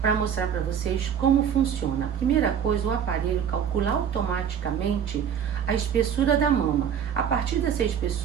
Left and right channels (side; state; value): left; quieter; 8.2 dB